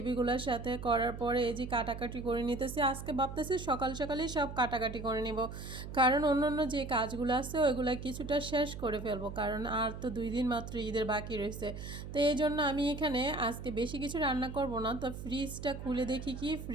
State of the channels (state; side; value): noise; right; hum, 9 dB below the sound